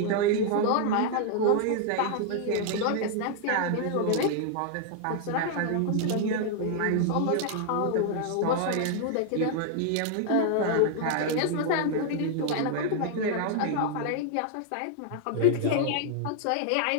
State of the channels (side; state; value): both; different; correlation 0.00